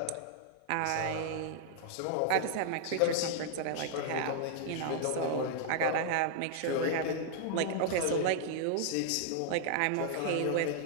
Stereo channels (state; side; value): different; both; correlation 0.00